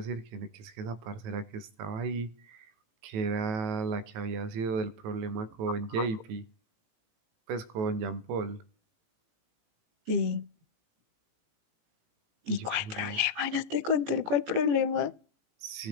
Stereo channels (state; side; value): late; left; 18 ms